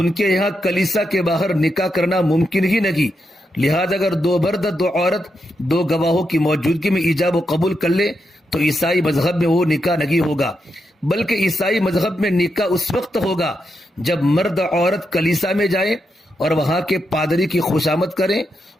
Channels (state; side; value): normal; both; correlation 0.84